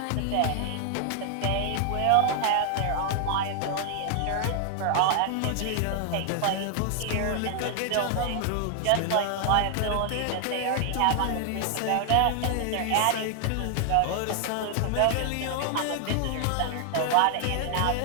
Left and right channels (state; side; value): different; both; correlation 0.00